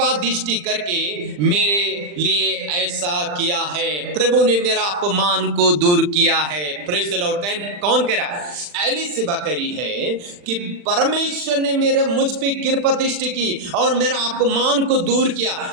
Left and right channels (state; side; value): late; left; 40 ms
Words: दृष्टि करके मेरे लिए ऐसा किया है। प्रभु ने मेरा अपमान को दूर किया है। Praise the Lord. कौन कह रहा है? एलिशिबा कह रही है कि परमेश्वर ने मेरे मुझ पे कृपा दृष्टि की और मेरा अपमान को दूर किया।